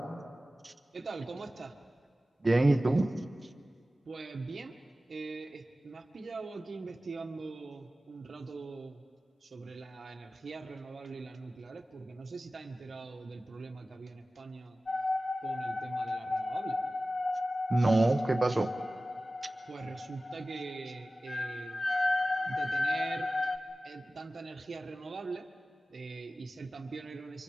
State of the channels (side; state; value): both; normal; correlation 0.96